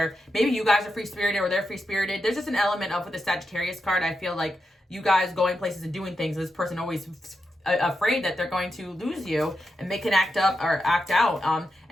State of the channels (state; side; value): normal; both; correlation 0.87